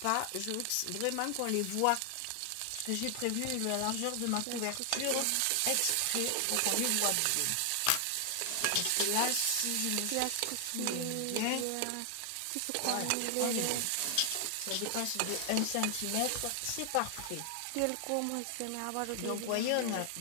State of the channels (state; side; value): different; both; correlation 0.00